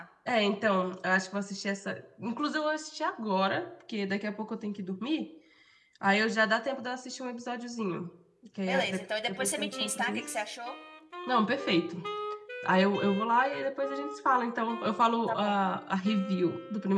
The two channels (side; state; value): both; identical; correlation 1.00